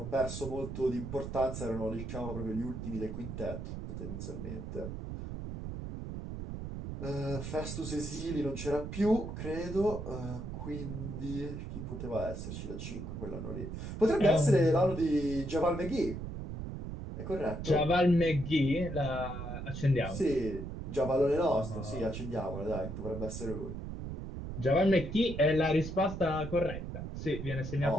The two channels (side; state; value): right; noise; rumble, 7 dB below the sound